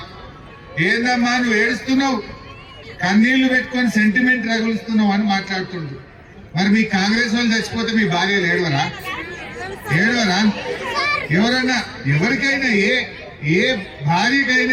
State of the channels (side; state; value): both; identical; correlation 1.00